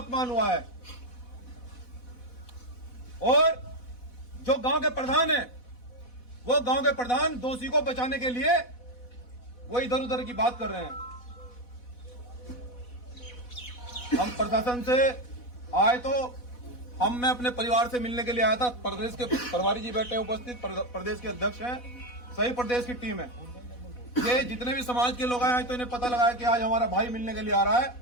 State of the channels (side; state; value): right; late; 4.1 ms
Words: हुआ है। और जो गांव के प्रधान है, वो गांव के प्रधान दोषी को बचाने के लिए वो इधर उधर की बात कर रहे हैं। हम प्रशासन से आए तो मैं अपने परिवार से मिलने के लिए आया था। प्रदेश के प्रभारी जी बैठे हैं उपस्थित, प्रदेश के अध्यक्ष हैं, सही प्रदेश की टीम है। ये जितने भी समाज के लोग आए तो इन्हें पता लगा कि आज हमारा भाई मिलने के लिए आ रहा है।